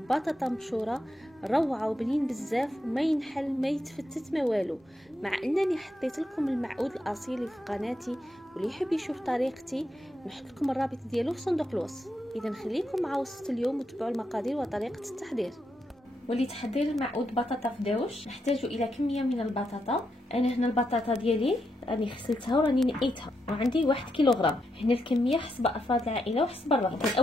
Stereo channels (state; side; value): normal; both; correlation 0.82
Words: مبشورة روعة وبنين بزاف وما ينحل ما يتفتت ما والو، مع انني حطيت لكم المعود الاصيل في قناتي، واللي يحب يشوف طريقتي نحط لكم الرابط ديالو في صندوق الوصف. اذا خليكم مع وصفه اليوم وتبعوا المقادير وطريقه التحضير. ولتحضير المعود بطاطا فداوش نحتاج الى كميه من البطاطا. انا هنا البطاطا ديالي راني غسلتها وراني نقيتها وعندي 1 كيلوغرام. هنا الكميه حسب افراد العائله وحسب الرغبه.